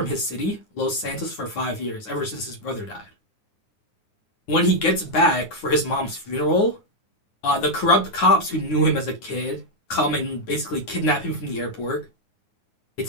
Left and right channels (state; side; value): late; right; 9.6 ms